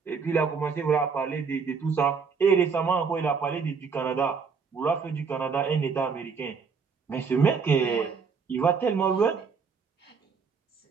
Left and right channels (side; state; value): left; quieter; 5.5 dB